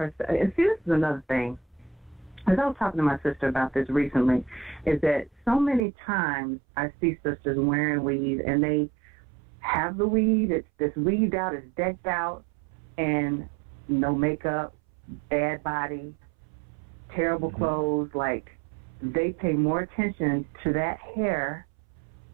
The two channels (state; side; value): drops out; left; at 5.8 s